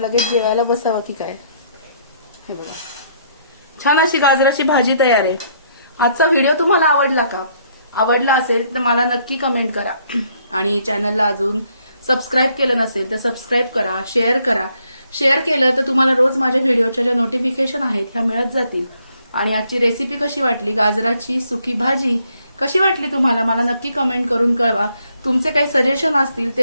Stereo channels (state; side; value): inverted; both; correlation -0.69